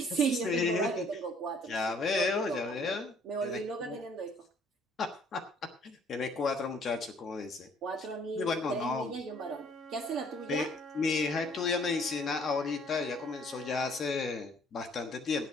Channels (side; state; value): both; normal; correlation 0.60